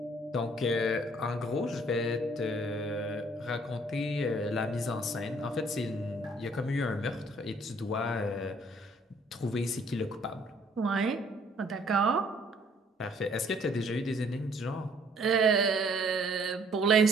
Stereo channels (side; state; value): both; normal; correlation 0.61